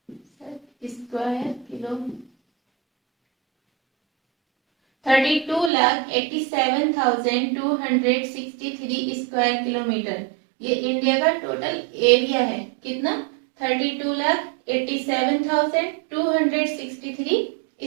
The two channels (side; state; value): left; drops out; at 5.7 s